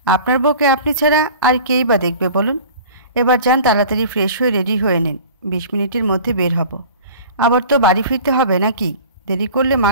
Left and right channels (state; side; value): inverted; both; correlation -0.42